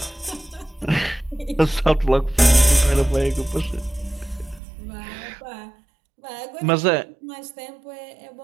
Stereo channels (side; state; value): left; drops out; at 4.6 s